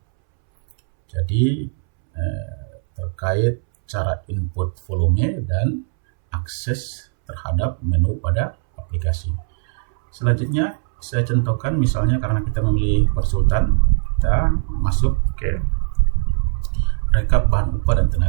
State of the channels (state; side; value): silent; left; 66 dB below the other